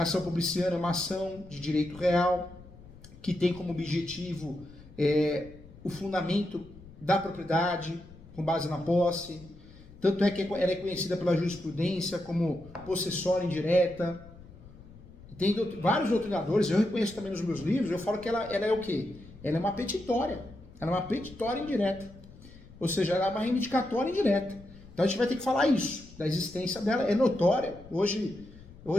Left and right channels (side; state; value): left; noise; rumble, 20 dB below the sound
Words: ação publiciana é uma ação de direito real, que tem como objetivo o fundamento da propriedade, com base na posse. Tanto é que ela é conhecida pela jurisprudência como possessória indireta. Tem vários doutrinadores, eu reconheço também nos meus livros, eu falo que ela é o quê? Ela é uma petitória. Ela é uma petitória indireta. Ou seja, ela é uma reivindicatória indireta. Então a gente vai ter que falar isso, da existência dela, é notória. Hoje